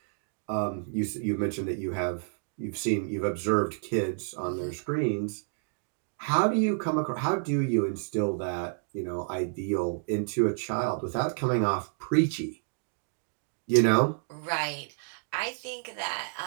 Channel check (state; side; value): silent; left; 58 dB below the other